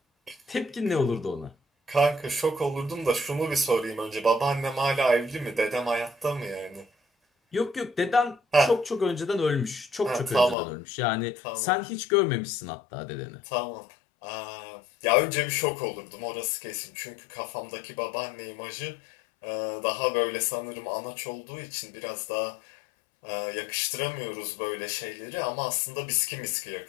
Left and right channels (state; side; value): drops out; right; at 10.6 s